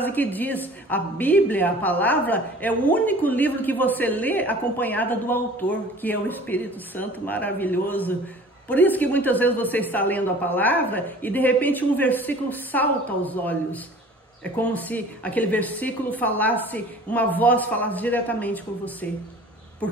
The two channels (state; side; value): normal; both; correlation 0.46